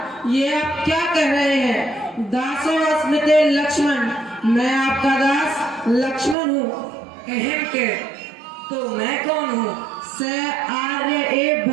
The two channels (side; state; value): left; drops out; at 6.4 s